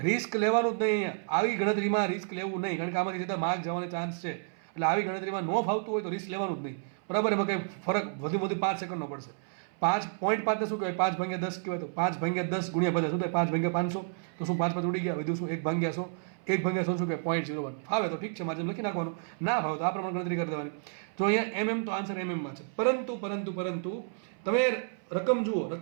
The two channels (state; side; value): silent; left; 57 dB below the other